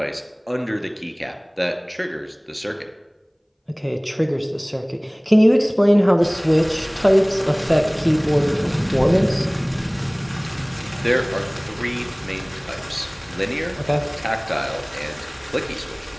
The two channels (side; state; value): both; identical; correlation 1.00